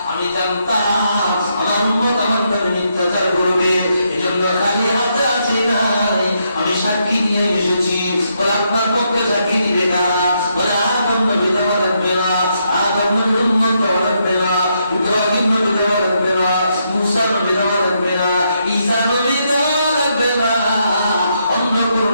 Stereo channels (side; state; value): both; inverted; correlation -0.78